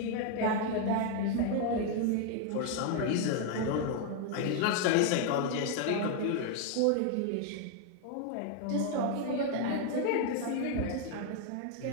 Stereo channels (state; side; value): different; both; correlation 0.01